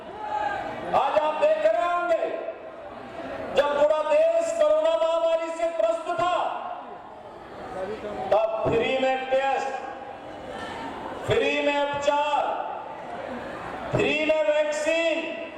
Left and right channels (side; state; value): both; identical; correlation 1.00